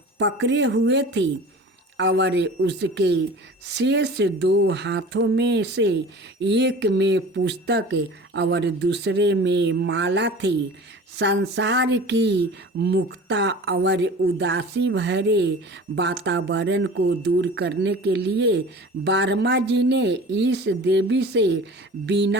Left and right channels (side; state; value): both; normal; correlation 0.40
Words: पकड़े हुए थी और उसके शेष 2 हाथों में से एक में पुस्तक और दूसरे में माला थी। संसार की मुक्ता और उदासी भरे वातावरण को दूर करने के लिए वर्मा जी ने इस देवी से